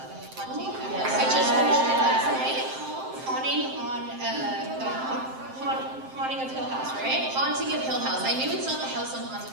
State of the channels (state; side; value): late; left; 7.7 ms